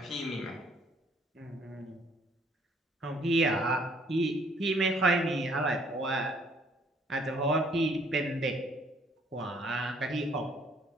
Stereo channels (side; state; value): both; normal; correlation 0.62